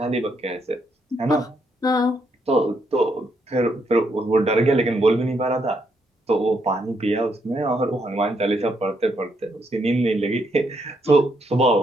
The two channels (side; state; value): both; normal; correlation 0.76